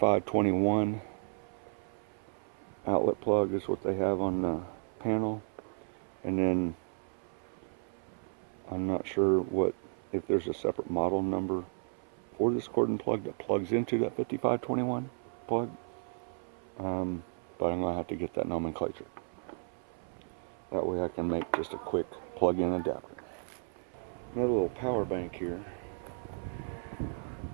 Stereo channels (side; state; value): left; silent; 55 dB below the other